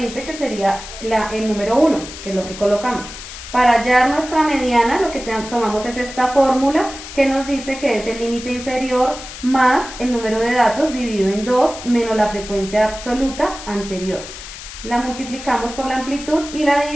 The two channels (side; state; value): left; noise; hiss, 12 dB below the sound